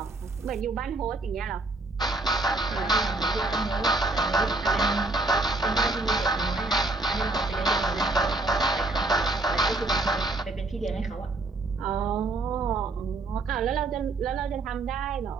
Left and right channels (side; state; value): left; quieter; 3.1 dB